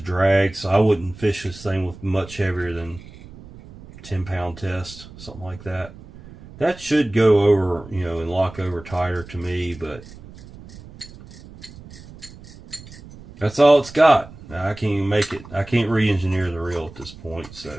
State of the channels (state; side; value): noise; right; rumble, 18 dB below the sound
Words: drag, so I wouldn't fish this thing with much heavier than 10-pound test, something like that. That should go over, you know, and lock over tighter to me, but that's all it's got. Now, I can't even make it. I can't re-engineer the reel at this point, so